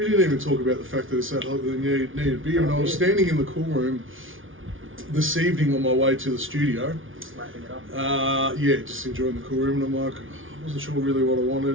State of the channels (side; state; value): left; late; 0.57 ms